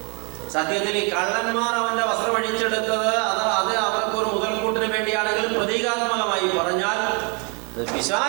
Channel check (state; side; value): quieter; left; 34.0 dB